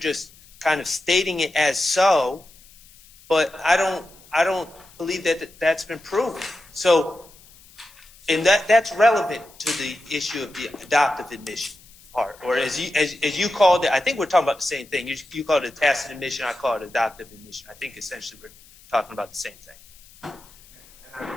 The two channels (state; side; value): noise; left; hiss, 25 dB below the sound